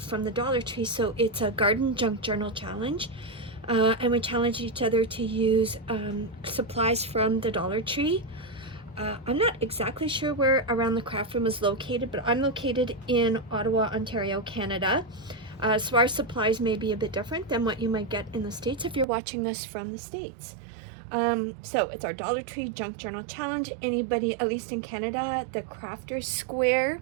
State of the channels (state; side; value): drops out; left; at 19.1 s